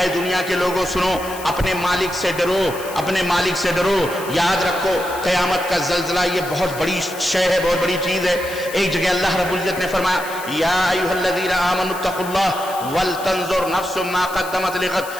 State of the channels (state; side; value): noise; left; hiss, 14 dB below the sound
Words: دنیا کے لوگوں سنو, اپنے مالک سے ڈرو, اپنے مالک سے ڈرو. یاد رکھو قیامت کا زلزلہ یہ بہت بڑی شے ہے, بہت بڑی چیز ہے. ایک جگہ اللہ رب العزت نے فرمایا یا ایھا الذین آمنوا اتقوا اللہ ولتنظر نفس ما قدمت لغد,